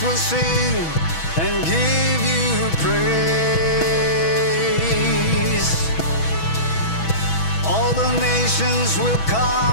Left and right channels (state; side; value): late; right; 6.1 ms